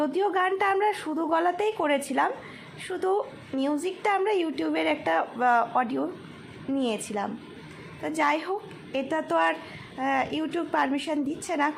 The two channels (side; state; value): both; identical; correlation 1.00